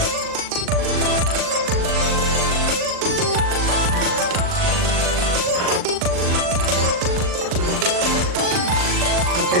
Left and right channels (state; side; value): late; left; 39 ms